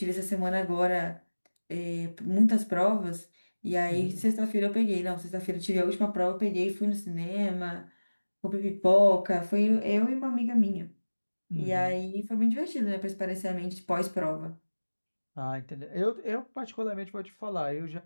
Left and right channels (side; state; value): both; inverted; correlation -1.00